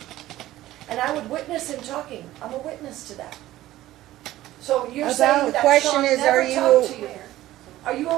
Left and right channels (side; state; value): left; quieter; 15.2 dB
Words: And I would witness him talking. I'm a witness to that. So you're About- saying The that question Sean is, never are you- talked to you? Are you